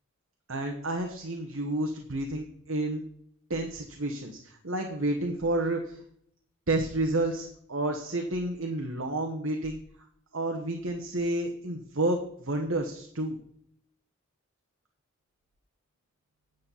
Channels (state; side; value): normal; both; correlation 0.22